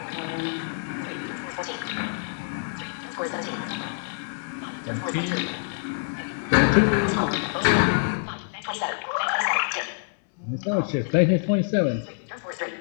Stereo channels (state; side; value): silent; right; digital silence